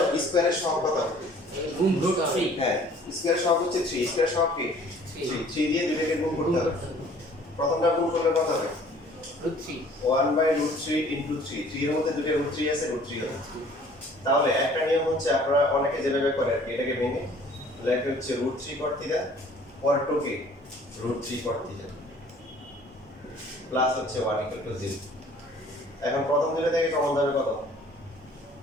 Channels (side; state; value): both; normal; correlation 0.53